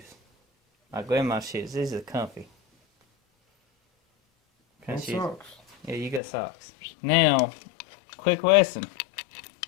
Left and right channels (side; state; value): right; drops out; at 6.2 s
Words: My grandma's shoes. These are comfy. And Shoes. socks. Yeah, you got socks. Now, quick lesson.